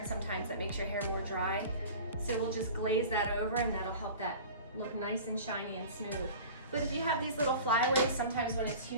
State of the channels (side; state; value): both; inverted; correlation -0.38